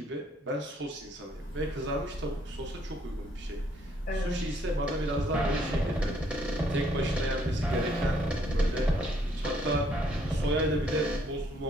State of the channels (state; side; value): normal; both; correlation 0.68